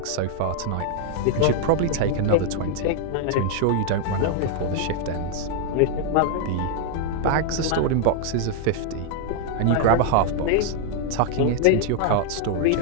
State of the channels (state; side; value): different; both; correlation 0.00